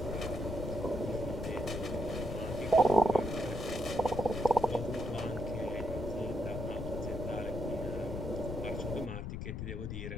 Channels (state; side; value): noise; left; rumble, 5 dB below the sound